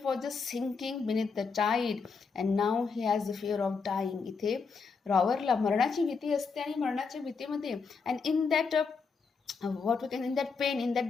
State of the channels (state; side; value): quieter; right; 5.1 dB